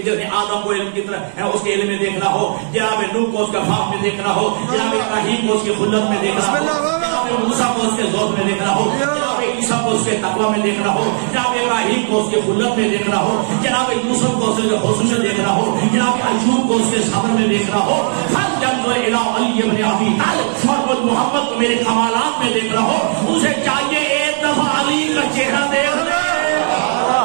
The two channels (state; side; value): silent; left; digital silence